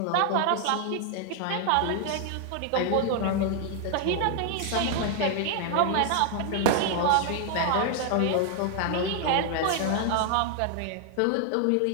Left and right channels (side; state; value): both; different; correlation 0.00